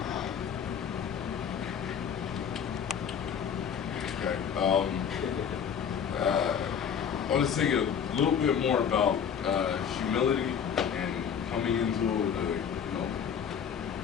Okay. I want to say a little bit more about humility and coming into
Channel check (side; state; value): right; quieter; 7.7 dB